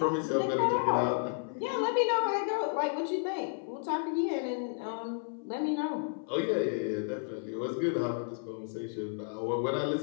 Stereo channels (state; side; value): silent; right; 56 dB below the other